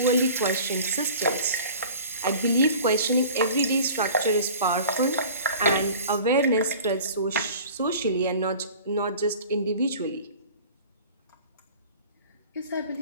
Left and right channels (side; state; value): both; inverted; correlation -0.43